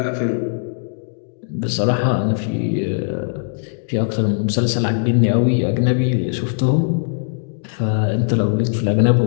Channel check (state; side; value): silent; right; digital silence